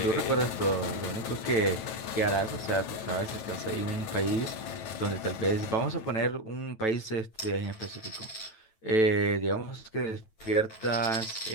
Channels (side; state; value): right; late; 9.1 ms